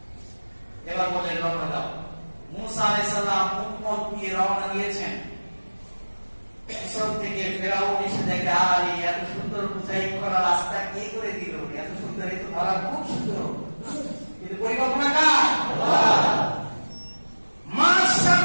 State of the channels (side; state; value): both; inverted; correlation -1.00